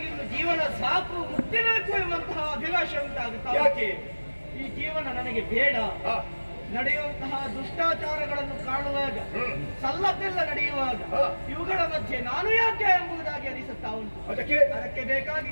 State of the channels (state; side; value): inverted; both; correlation -1.00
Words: ಜೀವನ ಸಾಕು, ಮುಕ್ತಿಬೇಕು ಎಂಬಂತಹ ಅಭಿಲಾಷೆ ಉಂಟಾಗುತ್ತಾ. ಯಾಕೆ ಈ ಜೀವನ ನನಗೆ ಬೇಡ. ನಡೆಯುವಂತಹ ದುಷ್ಟಾಚಾರಗಳನ್ನು ಕಾಣುವಾಗ, ಸಲ್ಲದ್ದೆಲ್ಲ ನಡೆಯುವಾಗ ಇವುಗಳ ಮಧ್ಯೆ ನಾನು ಯಾಕೆ ಎಂಬುದಾಗಿ ಅನಿಸುತ್ತಾ ಉಂಟು. ಅದಕ್ಕೆ ಬೇಕಾಗಿ